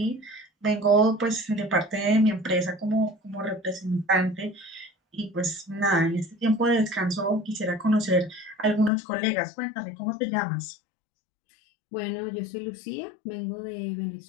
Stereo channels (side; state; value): right; drops out; at 8.9 s